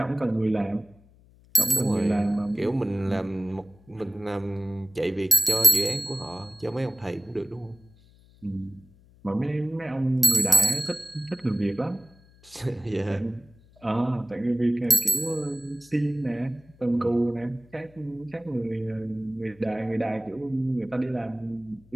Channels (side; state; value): left; noise; hum, 27 dB below the sound